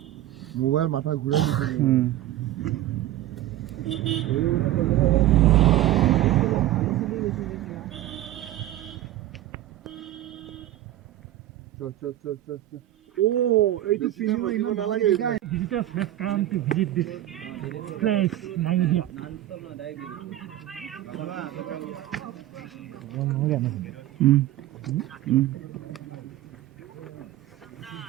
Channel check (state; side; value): quieter; left; 14.2 dB